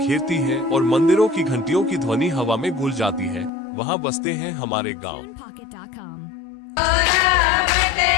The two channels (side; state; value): right; drops out; at 3.5 s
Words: हैं और मंदिरों की घंटियों की ध्वनि हवा में घुल जाती है, वहां बसते हैं हमारे गांव।